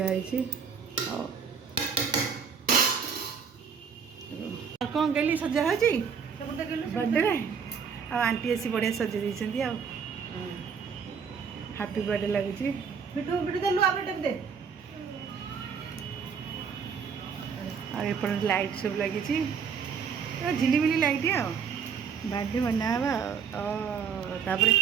ଆଉ କ'ଣ ଗେଲି ସଜା ହେଉଛି ବର୍ଥଡେରେ ଆଉ ଆଣ୍ଟି ଆସି ବଢ଼ିଆ ସଜେଇ ଦେଇଛନ୍ତି ଆଉ ହାପି ବର୍ଥଡେ ଲାଗୁଛି ଆଉ ଏପଟେ ଲାଇଟ୍ ସବୁ ଲାଗିଛି ଝିଲିମିଲି ଲାଇଟ୍ ଆଉ ବାର୍ଥଡେ ବନା ହେବା ଆଉ ତାପରେ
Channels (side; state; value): left; quieter; 6.5 dB